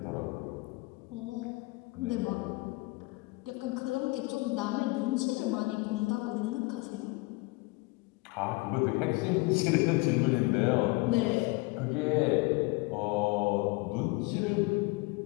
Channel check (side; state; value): right; quieter; 25.0 dB